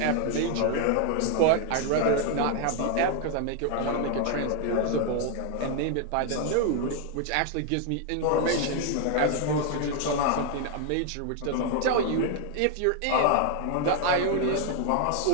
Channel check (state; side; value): different; both; correlation 0.00